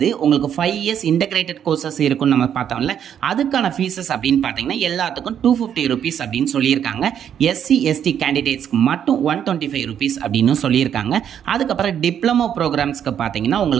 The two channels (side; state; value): left; quieter; 9.1 dB